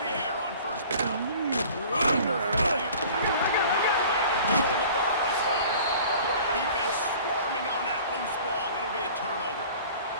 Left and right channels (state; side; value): inverted; both; correlation -0.46